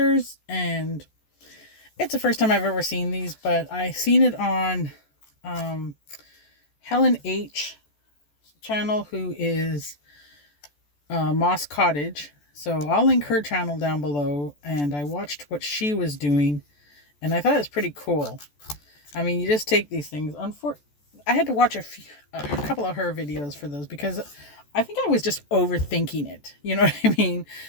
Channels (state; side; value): late; right; 14 ms